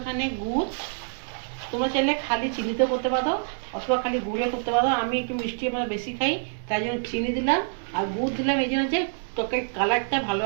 গুড়। তোমরা চাইলে খালি চিনিতে করতে পারো অথবা খালি গুড়ে করতে পারো। আমি একটু মিষ্টি আমরা বেশি খাই, তাই জন্য চিনি দিলাম। আর গুড় দিলাম এই জন্য যে তরকারির কালারটা ভালো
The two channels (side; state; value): left; silent; digital silence